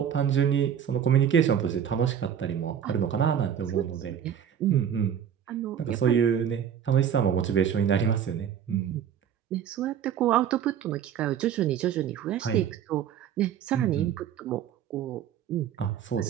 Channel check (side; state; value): left; quieter; 8.9 dB